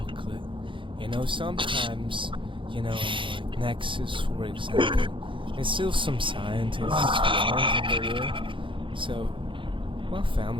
You know, sometimes, in like Nexus, for example, there's still some scientists who aren't in the war. So, my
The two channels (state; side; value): late; left; 0.25 ms